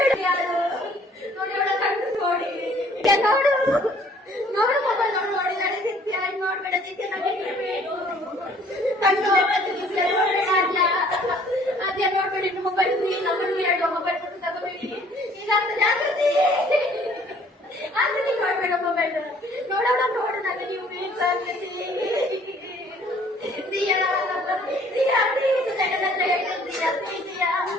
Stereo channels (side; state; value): both; normal; correlation 0.58